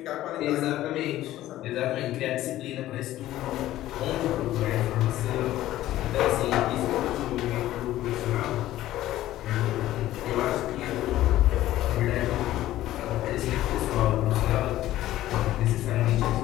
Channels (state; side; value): quieter; right; 14.5 dB